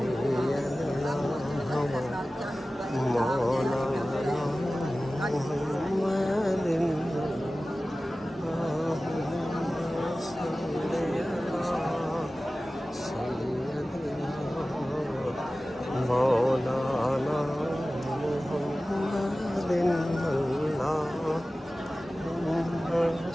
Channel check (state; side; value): normal; both; correlation 0.96